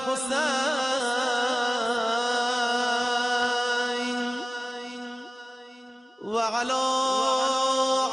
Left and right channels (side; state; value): both; normal; correlation 0.97